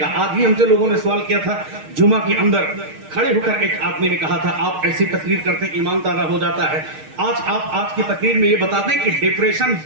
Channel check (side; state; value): left; late; 6.5 ms